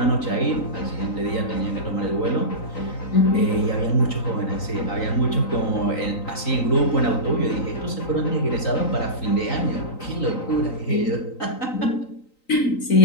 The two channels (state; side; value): late; right; 3.9 ms